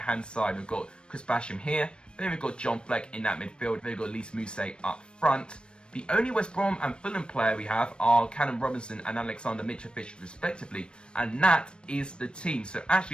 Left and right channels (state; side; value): late; right; 0.055 ms